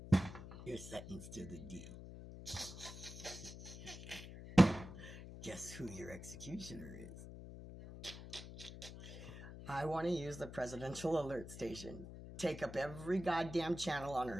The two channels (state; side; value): noise; left; hum, 12 dB below the sound